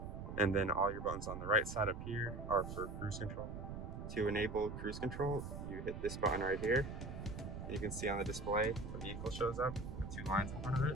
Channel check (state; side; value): noise; right; rumble, 7 dB below the sound